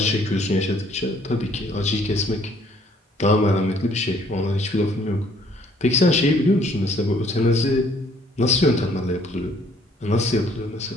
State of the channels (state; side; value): normal; both; correlation 0.61